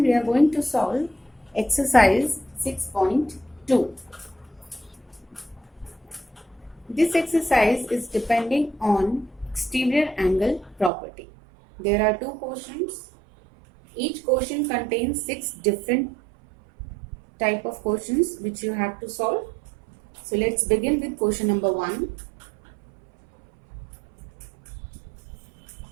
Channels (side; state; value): left; drops out; at 10.9 s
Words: are going to solve exercise 6.2. This exercise is depending on exterior angle property. There are two questions. Each question contains 6 different type of questions which you have to solve. So let's begin with question number 1.